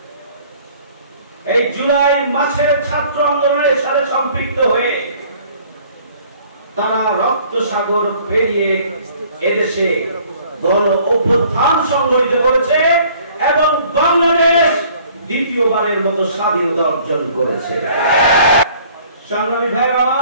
এই জুলাই মাসের ছাত্র আন্দোলনের সাথে সম্পৃক্ত হয়ে তারা রক্ত সাগর পেরিয়ে এদেশে গণ অভ্যুত্থান সংগঠিত করেছে এবং বাংলাদেশ দ্বিতীয়বারের মতো স্বাধীনতা অর্জন করেছে। সংগ্রামী ভাইরা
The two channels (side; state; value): both; inverted; correlation -0.55